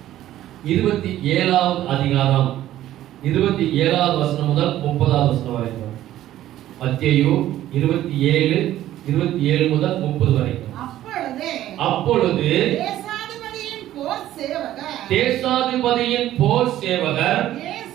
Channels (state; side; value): quieter; left; 13.4 dB